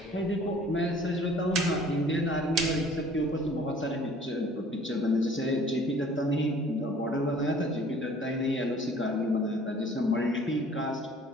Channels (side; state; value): both; normal; correlation 0.52